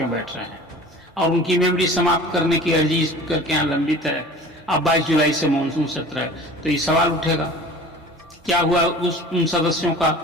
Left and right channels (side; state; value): both; normal; correlation 0.42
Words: बैठ रहे हैं। और उनकी मेमोरी समाप्त करने की अर्जी स्पीकर के यहाँ लंबित है। अब 22 जुलाई से मानसून सत्र है, तो ये सवाल उठेगा क्या हुआ उन सदस्यों